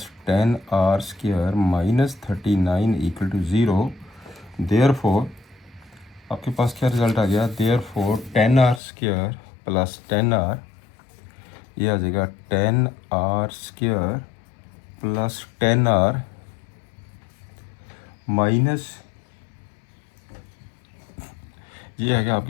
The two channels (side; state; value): right; drops out; at 8.8 s